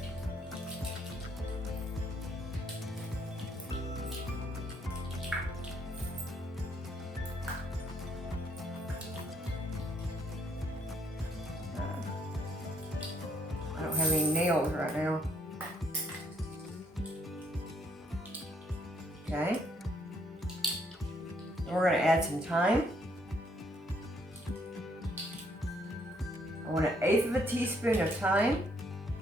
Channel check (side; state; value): both; normal; correlation 0.70